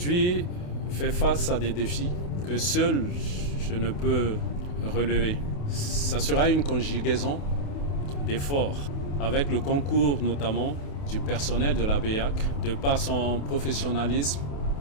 fait face à des défis que seul je ne peux relever. Ça sera une conjugaison d'efforts avec le concours notamment du personnel de la BEAC de par son professionnalisme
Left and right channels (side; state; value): right; late; 28 ms